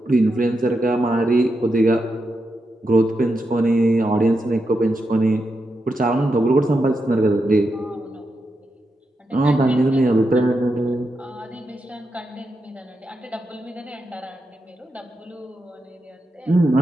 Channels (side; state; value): both; normal; correlation 0.86